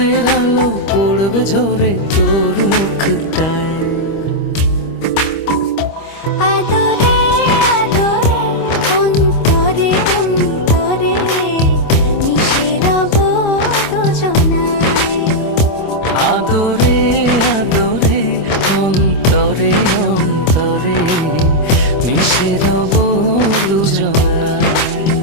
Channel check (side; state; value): right; late; 25 ms